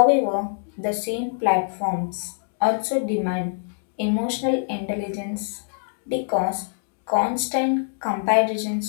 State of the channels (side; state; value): right; silent; digital silence